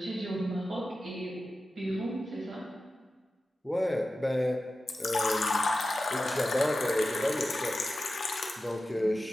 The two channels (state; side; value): normal; both; correlation 0.93